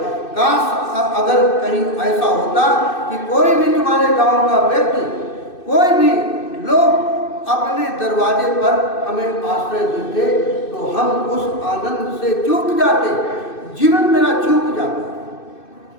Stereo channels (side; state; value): right; late; 2.6 ms